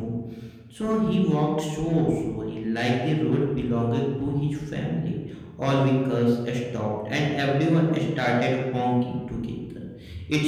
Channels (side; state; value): both; identical; correlation 1.00